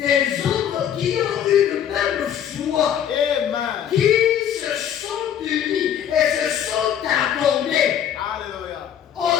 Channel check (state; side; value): quieter; right; 9.4 dB